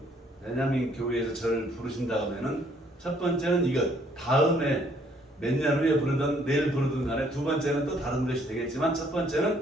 베냐민 교회에서 저를 부르신다 하면은 첫 번째는 이것, 다음에 몇 년 후에 부르든 내일 부르든 간에 두 번째는 또 다른 것이 되겠지만 첫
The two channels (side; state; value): both; normal; correlation 0.64